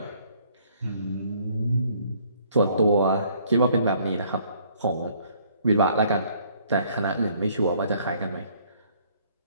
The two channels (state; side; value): inverted; both; correlation -0.62